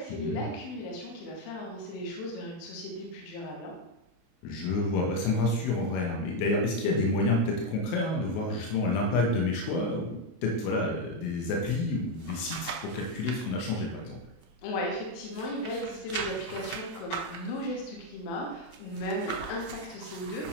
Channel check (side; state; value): right; late; 24 ms